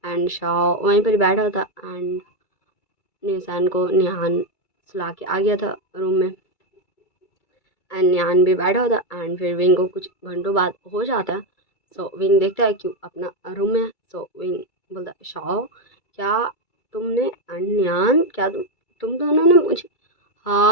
एंड शाह वहीं पर बैठा था एंड निशान को निहान सुला के आ गया था रूम में एंड निहान भी बैठा होता एंड फिर विंग को कुछ घंटों बाद हो जाता है। सो विंग देखता है क्यों अपना रूम में। सो विंग बोलता है शाह क्या तुमने एंड निहान क्या तुम दोनों ने मुझे,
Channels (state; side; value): late; right; 2.3 ms